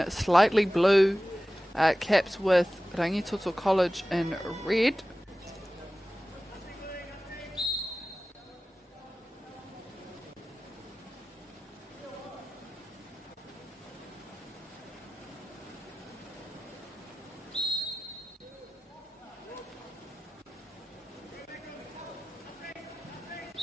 slightly blue caps with Rangi Toto College in red.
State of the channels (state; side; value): normal; both; correlation 0.96